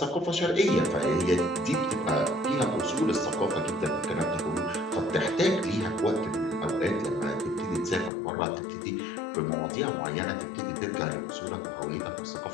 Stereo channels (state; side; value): drops out; right; at 8.1 s